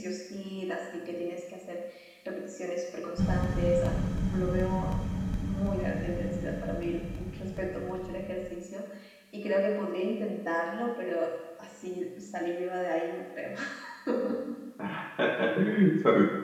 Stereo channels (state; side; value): identical; both; correlation 1.00